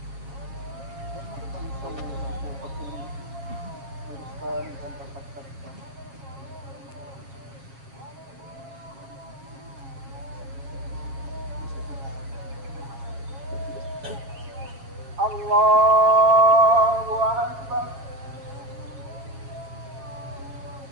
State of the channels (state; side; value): late; left; 7.6 ms